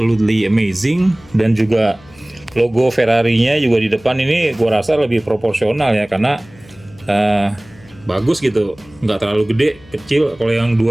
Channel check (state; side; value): noise; left; hum, 25 dB below the sound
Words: amazing, dan juga logo Ferrari-nya juga di depan ini gue rasa lebih proporsional ya, karena bagus gitu, nggak terlalu gede, kecil. Kalau yang